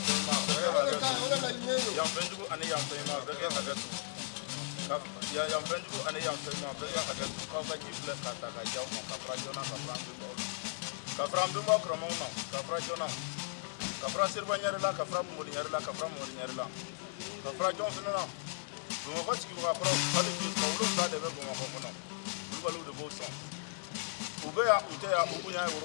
tema. Ya bendu ani ya tema. Bege hagatu. Ya bendu ani ya tema. Bege hagatu. Ka ba jifle kata ka jaw mo ka prajona ka prandu bo. Kafram bimba kromona kafra jona kafra sirba nyarela kafra modi nyarela kafra modi nyarela kafra jon finana dum ko tiki ko kafra hadi ki ko lu da de be ko ko no lu balu de bo son ube ya ute ya ubunya ya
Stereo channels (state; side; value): silent; right; 54 dB below the other